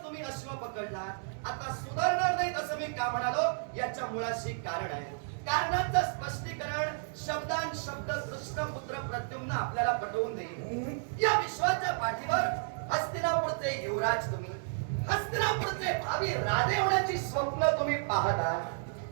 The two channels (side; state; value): left; silent; digital silence